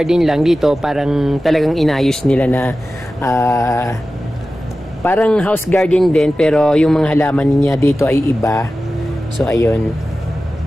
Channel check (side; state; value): both; normal; correlation 0.95